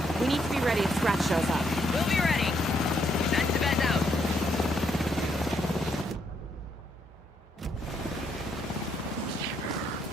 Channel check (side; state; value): both; normal; correlation 0.74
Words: We need to be ready if Scratch shows up. We'll be ready. SMPS out.